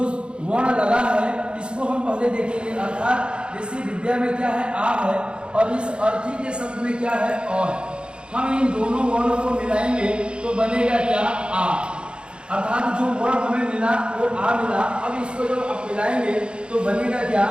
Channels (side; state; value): left; late; 0.054 ms